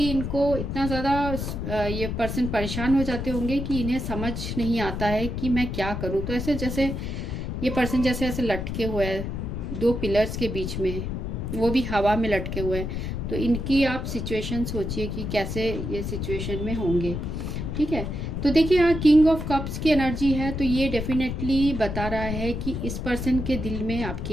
इनको इतना ज़्यादा ये पर्सन परेशान हो जाते होंगे कि इन्हें समझ नहीं आता है कि मैं क्या करूँ। तो ऐसे जैसे ये पर्सन जैसे ऐसे लटके हुए हैं 2 पिलर्स के बीच में, वो भी हवा में लटके हुए हैं। तो इनकी आप सिचुएशन सोचिए कि कैसे ये सिचुएशन में होंगे। ठीक है, तो देखिए यहाँ किंग ऑफ कप्स की एनर्जी है, तो ये डेफिनेटली बता रहा है कि इस पर्सन के दिल में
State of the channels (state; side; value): noise; left; rumble, 4 dB below the sound